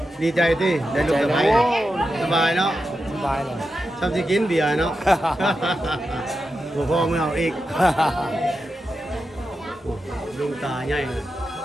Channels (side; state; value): both; normal; correlation 0.89